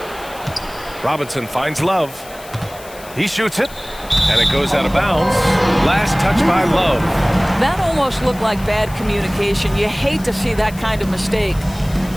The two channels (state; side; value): noise; left; hiss, 19 dB below the sound